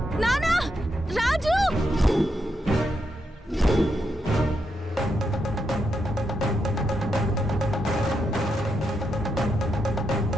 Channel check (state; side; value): normal; both; correlation 0.82